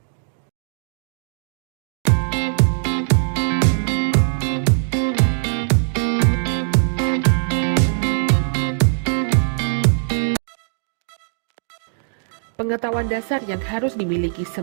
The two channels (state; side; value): silent; left; digital silence